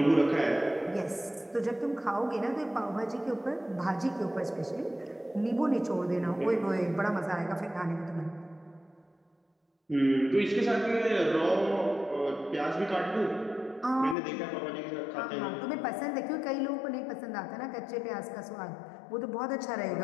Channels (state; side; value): drops out; right; at 14.2 s